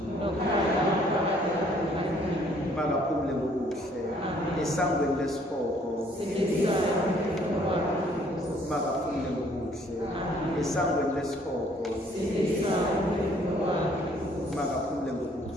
Makaphumule ngokuhle. Esangweni lesihoko. Makaphumule ngokuhle. Esangweni lesihoko. Makaphumule ngokuhle.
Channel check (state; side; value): normal; both; correlation 0.61